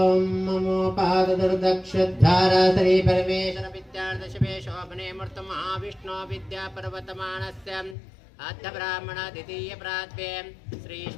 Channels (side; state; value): right; drops out; at 8.0 s